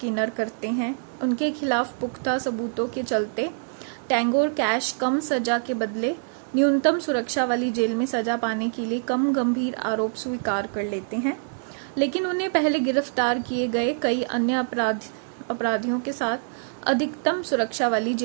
करते हैं। उनके खिलाफ पुख्ता सबूतों के चलते टैंगो और कैश कम सजा के बदले न्यूनतम सुरक्षा वाली जेल में सजा पाने के लिए कम गंभीर आरोप स्वीकार कर लेते हैं, लेकिन उन्हें पहले गिरफ्तार किए गए कई अन्य अपराधियों के साथ अधिकतम सुरक्षा वाली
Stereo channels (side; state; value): left; silent; digital silence